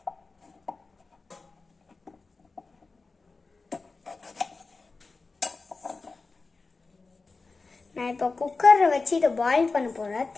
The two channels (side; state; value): right; quieter; 4.0 dB